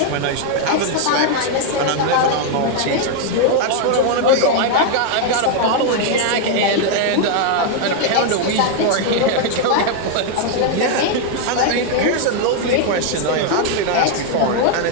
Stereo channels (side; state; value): both; different; correlation 0.00